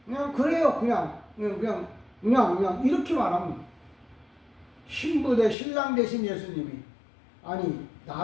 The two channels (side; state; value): right; drops out; at 5.6 s